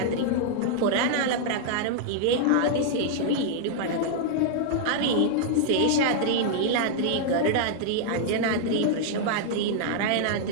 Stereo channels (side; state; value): both; different; correlation -0.01